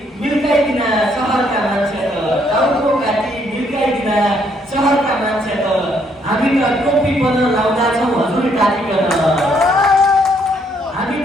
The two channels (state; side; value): normal; both; correlation 0.70